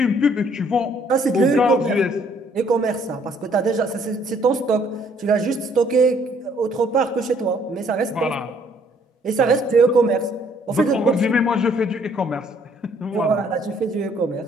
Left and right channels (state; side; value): normal; both; correlation 0.63